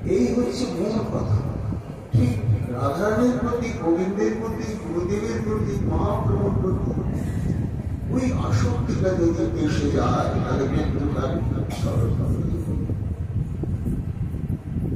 এই হচ্ছে মূল কথা। ঠিক রাধারানীর প্রতি, গোবিন্দের প্রতি, গুরুদেবের প্রতি, মহাপ্রভুর প্রতি ওই আসক্তিটা যদি এসে যায় তাহলে কিন্তু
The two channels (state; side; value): identical; both; correlation 1.00